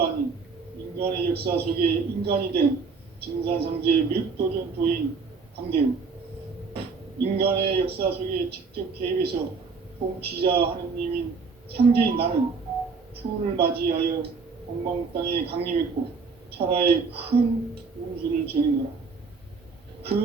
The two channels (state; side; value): quieter; left; 4.8 dB